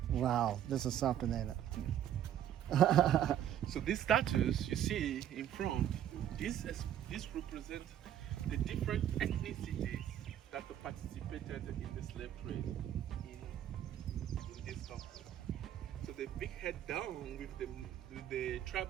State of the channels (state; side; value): quieter; left; 10.8 dB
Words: Wow, this is something, ain't it? So these statues you see in front, this represents the different ethnicities that participated in the slave trade in this country. So the big head down with the